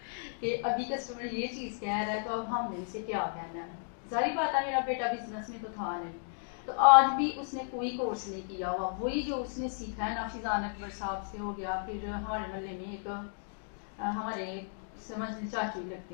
कि अभी कस्टमर ये चीज़ कह रहा है तो अब हमने इसे क्या कहना है। जाहिर बात है मेरा बेटा बिजनेस में तो था नहीं। तो आज भी उसने कोई कोर्स नहीं किया हुआ, वही जो उसने सीखा है ना फिज़ान अकबर साहब से हो गया। फिर हमारे मोहल्ले में एक हमारे समझ लीजिए चाचू ही लगते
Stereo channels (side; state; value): right; silent; digital silence